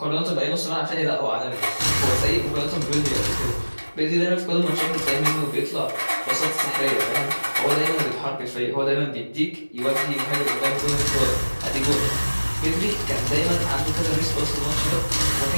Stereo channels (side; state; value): both; inverted; correlation -1.00